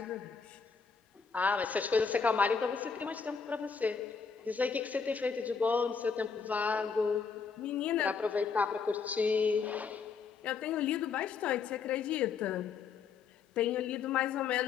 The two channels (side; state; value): right; quieter; 5.6 dB